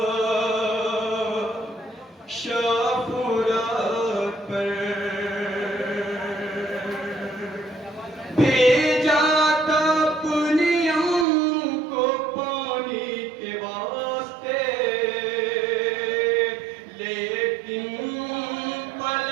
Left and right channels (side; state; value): left; drops out; at 11.2 s